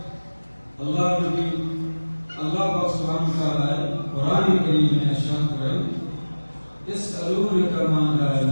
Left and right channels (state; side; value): inverted; both; correlation -1.00